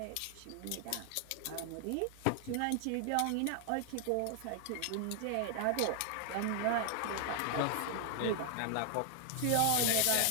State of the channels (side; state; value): both; different; correlation 0.00